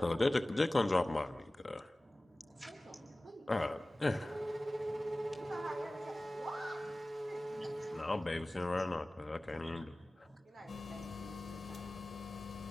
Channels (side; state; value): both; normal; correlation 0.98